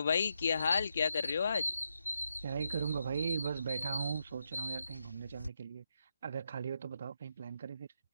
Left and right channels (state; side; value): inverted; both; correlation -0.82